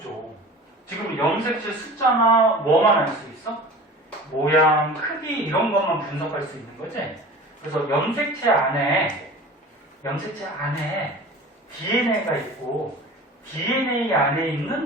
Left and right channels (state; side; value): normal; both; correlation 0.39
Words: 지금 염색체 숫자나 뭐만 알 수 있어? 모양, 크기 이런 것만 분석할 수 있는 거지? 그래서 염색체 안에 DNA가 있고 DNA 안에